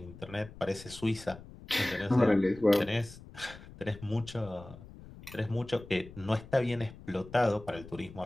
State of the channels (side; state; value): left; noise; rumble, 17 dB below the sound